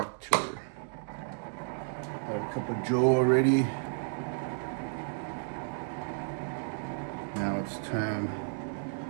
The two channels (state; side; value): silent; left; digital silence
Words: Had a cup of Joe already. Now it's time